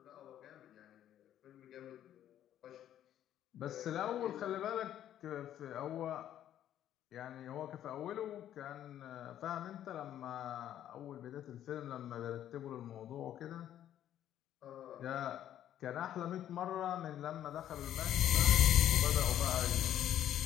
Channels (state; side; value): quieter; right; 11.3 dB